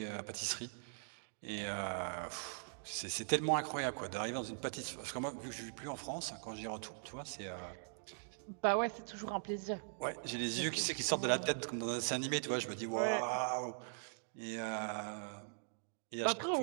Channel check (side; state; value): left; silent; digital silence